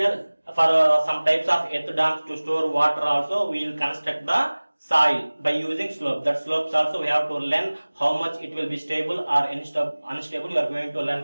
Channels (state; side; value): inverted; both; correlation -1.00